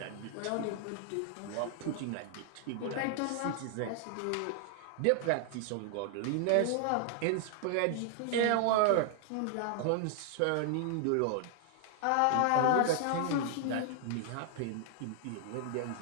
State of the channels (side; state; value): both; different; correlation 0.00